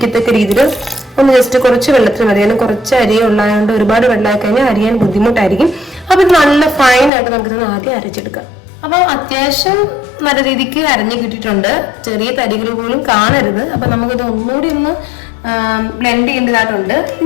രീതിയിൽ ഒന്ന് ജസ്റ്റ് കുറച്ച് വെള്ളത്തിൽ മതി. കാരണം കുറച്ച് അരിയെ ഉള്ളതുകൊണ്ട് ഒരുപാട് വെള്ളമായി കഴിഞ്ഞാൽ അരിയാൻ ബുദ്ധിമുട്ടായിരിക്കും. അപ്പൊ ഇത് നല്ല ഫൈൻ ആയിട്ട് നമുക്കിത് ആദ്യം അരച്ചെടുക്കാം. അപ്പൊ അത്യാവശ്യം നല്ല രീതിക്ക് അരഞ്ഞു കിട്ടിയിട്ടുണ്ട്. ചെറിയ തരികൾ പോലും കാണരുത്. അപ്പൊ നമുക്കിത് ഒന്നുകൂടി ഒന്ന് ബ്ലെൻഡ് ചെയ്യേണ്ടതായിട്ടുണ്ട്.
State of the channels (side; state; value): right; drops out; at 7.1 s